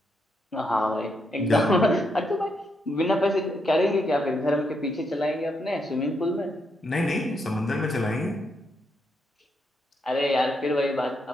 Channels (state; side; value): normal; both; correlation 0.79